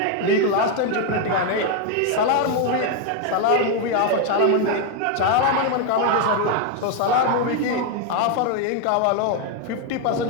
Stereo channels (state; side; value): different; both; correlation 0.01